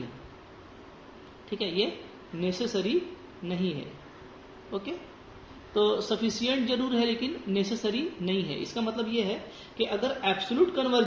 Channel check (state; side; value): identical; both; correlation 1.00